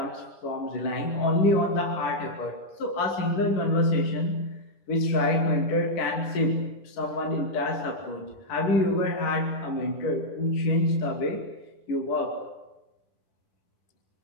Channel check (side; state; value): right; late; 10 ms